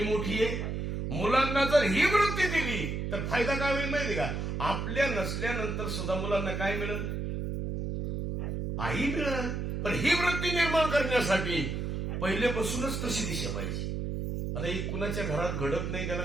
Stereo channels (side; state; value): right; noise; hum, 2 dB below the sound